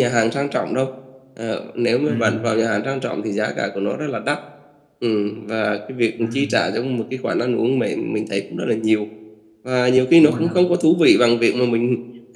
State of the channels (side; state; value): both; identical; correlation 1.00